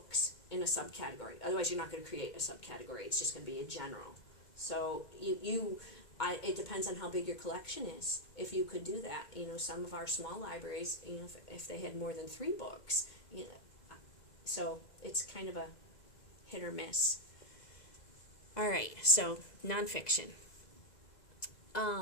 in a subcategory. Otherwise, you're not going to create a subcategory. It's just going to be a general. So it depends on how big your collection is. If you could do that, you know, some of our small libraries, you know, if they had more than 3 books, you know, so it's kind of a hit or miss. All right, so nonfiction.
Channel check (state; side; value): late; right; 2.0 ms